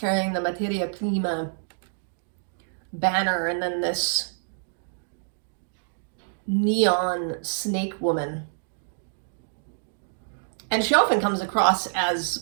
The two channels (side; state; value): left; silent; digital silence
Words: the Materia Prima banner, and then this neon snake woman. And she often comes across as